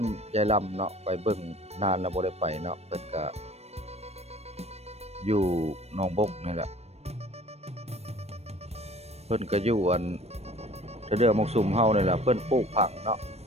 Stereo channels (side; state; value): left; late; 0.31 ms